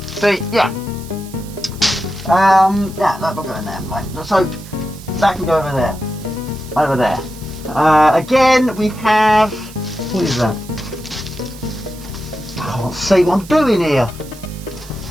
See, yeah. Yeah, that will go in there. Right. So that can go over there. Over there. Again, we have. What is that? I can't see what I'm doing here.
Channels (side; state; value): right; noise; hiss, 19 dB below the sound